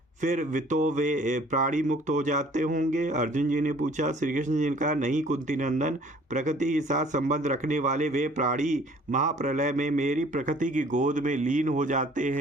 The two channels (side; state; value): both; normal; correlation 0.54